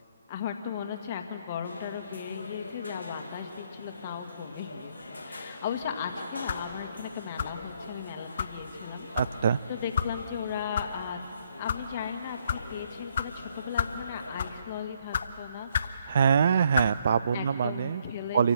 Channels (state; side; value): inverted; both; correlation -0.70